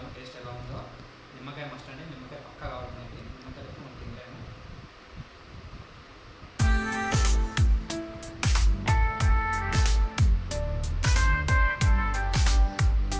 టేస్ట్ ఎలా ఉందో. నిమ్మకాయ మస్ట్ అండి, నిమ్మకాయ పక్కా కావాలి మనకి, నిమ్మకాయ ఎక్కువ మనం తినలేము.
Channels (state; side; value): identical; both; correlation 1.00